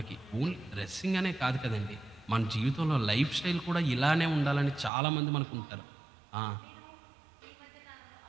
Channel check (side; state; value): left; drops out; at 4.9 s